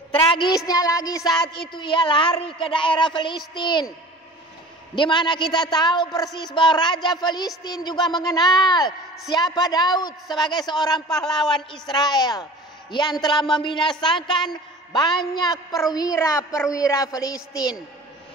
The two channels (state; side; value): normal; both; correlation 0.42